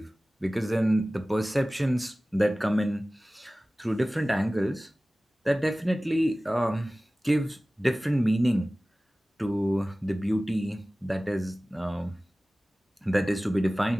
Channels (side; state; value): both; normal; correlation 0.97